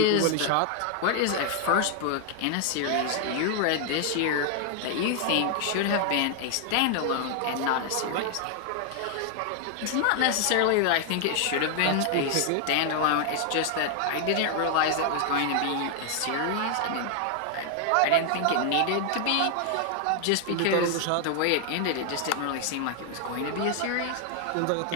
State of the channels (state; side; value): different; both; correlation 0.00